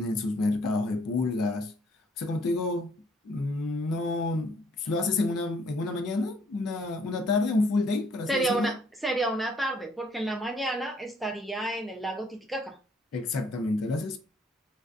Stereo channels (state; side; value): normal; both; correlation 0.65